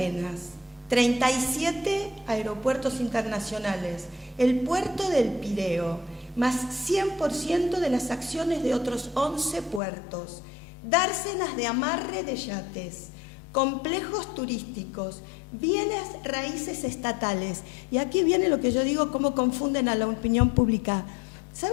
37 aeropuertos internacionales, el puerto del Pireo, más 100% de las acciones de otros 11 puertos, dársenas de amarre de yates, complejos turísticos, bienes raíces estatales. Y aquí viene lo que yo digo, cómo confunden a la opinión pública.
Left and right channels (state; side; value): drops out; right; at 9.8 s